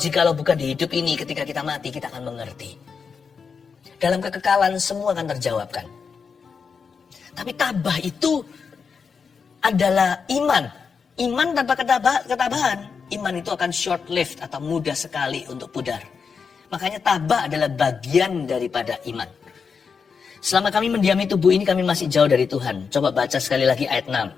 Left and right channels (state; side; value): quieter; right; 5.7 dB